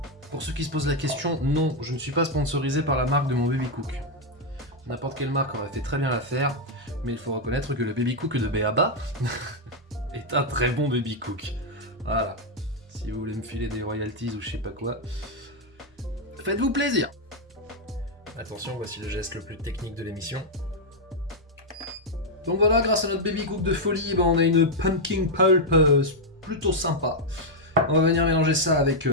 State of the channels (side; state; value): both; normal; correlation 0.00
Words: Pour ceux qui se posent la question, non, je ne suis pas sponsorisé par la marque de mon Baby Cook. N'importe quelle marque aurait fait très bien l'affaire, mais il faut reconnaître que le Baby Cook de Béaba est un très bon Baby Cook. Voilà, si vous voulez me filer des royalties ou je sais pas quoi, faites-vous plaisir. Attention, voici le geste le plus technique de l'émission. Donc voilà, grâce à notre Baby Cook de folie, on a une pumpkin pulp plutôt sympa. On va venir mélanger ça avec